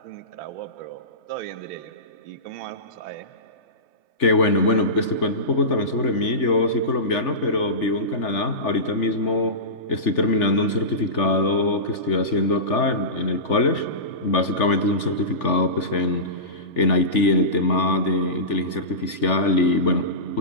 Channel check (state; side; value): late; right; 3.4 ms